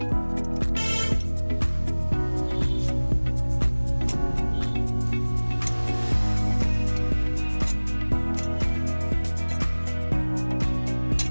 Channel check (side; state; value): both; inverted; correlation -1.00